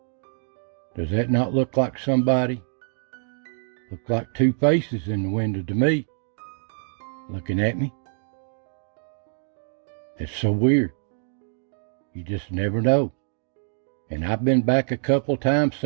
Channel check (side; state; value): left; silent; digital silence